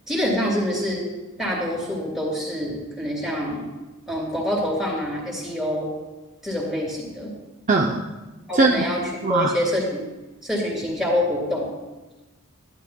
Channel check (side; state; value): both; normal; correlation 0.46